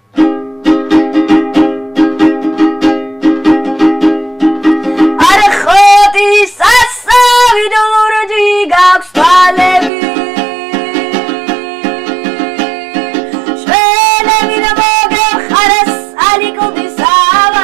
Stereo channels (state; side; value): drops out; left; at 9.9 s